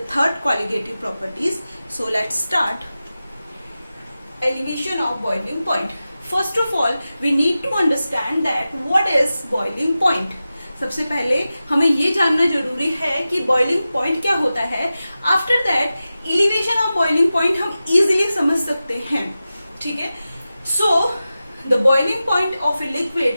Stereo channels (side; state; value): both; inverted; correlation -0.94